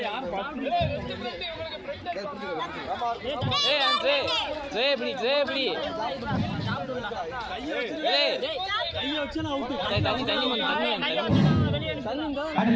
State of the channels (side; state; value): both; identical; correlation 1.00